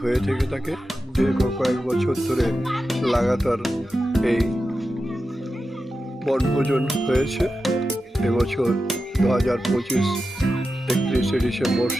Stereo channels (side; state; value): both; normal; correlation 0.91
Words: হয়ে থেকে থাকে। দীর্ঘ কয়েক বছর ধরে লাগাতার এই বনভোজন হয়েছে। এবছর 2025 31শে ডিসেম্বর